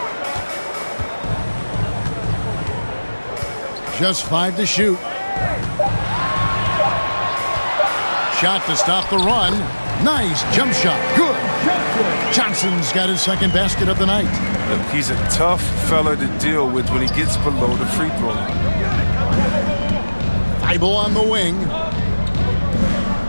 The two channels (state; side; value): inverted; both; correlation -1.00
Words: Just 5 to shoot. Shot to stop the run. Nice jump shot. Good. Johnson's got his second basket of the night. Look, he's a tough fella to deal with when he gets below the free throw line. Thibault on the wing.